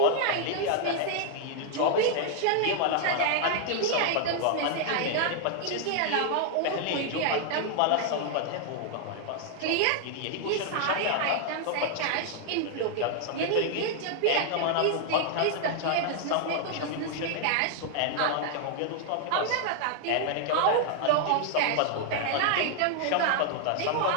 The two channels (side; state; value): both; different; correlation 0.00